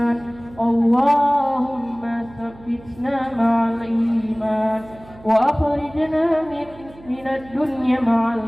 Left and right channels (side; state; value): right; noise; hum, 21 dB below the sound